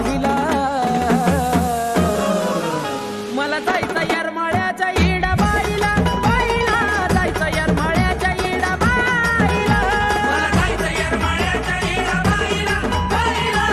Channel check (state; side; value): identical; both; correlation 1.00